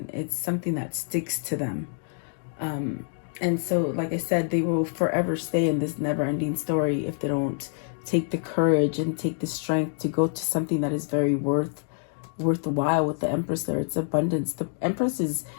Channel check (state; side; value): silent; right; 60 dB below the other